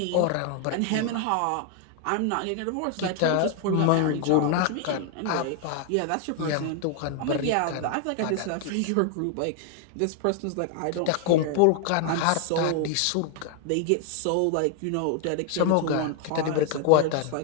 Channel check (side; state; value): both; different; correlation 0.00